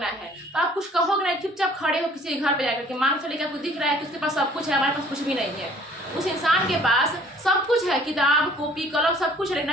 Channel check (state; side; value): normal; both; correlation 0.55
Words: है, तो आप कुछ कहोगे नहीं, चुपचाप खड़े हो किसी के घर पे जाकर के, मान चले कि आपको दिख रहा है कि उसके पास सब कुछ है, हमारे पास कुछ भी नहीं है। उस इंसान के पास सब कुछ है, किताब कॉपी कलम सब कुछ है, लेकिन